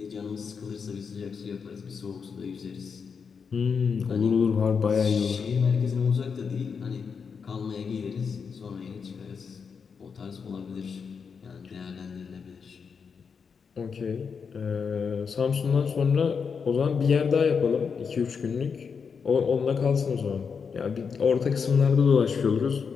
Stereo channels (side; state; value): right; quieter; 6.0 dB